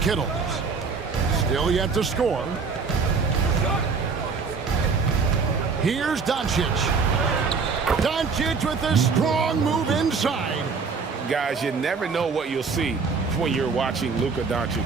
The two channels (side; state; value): left; quieter; 5.0 dB